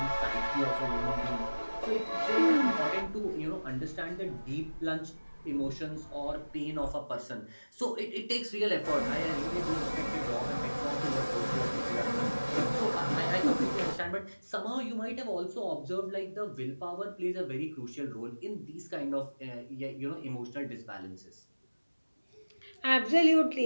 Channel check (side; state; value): both; inverted; correlation -1.00